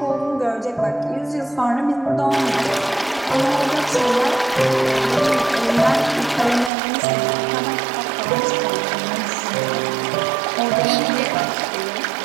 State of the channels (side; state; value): left; drops out; at 6.7 s